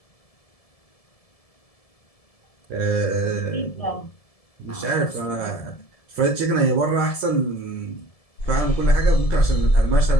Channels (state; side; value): late; right; 1.7 ms